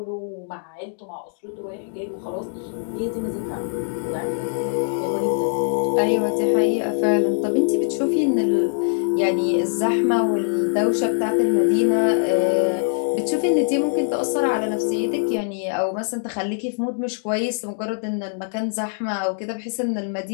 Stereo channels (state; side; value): silent; right; digital silence